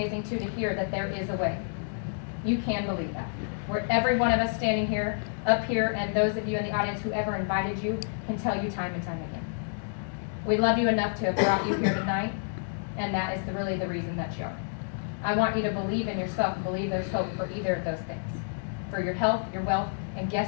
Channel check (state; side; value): silent; right; digital silence